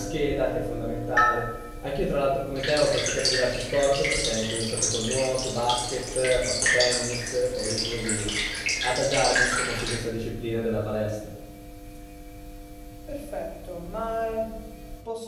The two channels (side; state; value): both; identical; correlation 1.00